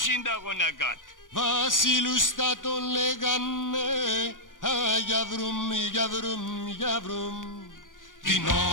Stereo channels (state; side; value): late; right; 0.88 ms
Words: είναι τα γονακάτ? Βασίλους θα τον λέγανε, α, για βρούμ, για βρούμ, για βρούμ. Την